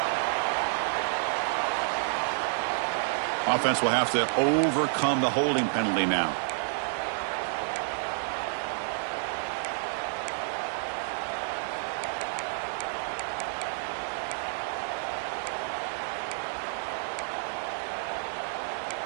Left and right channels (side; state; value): left; silent; 58 dB below the other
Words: Offense will have to overcome the holding penalty now.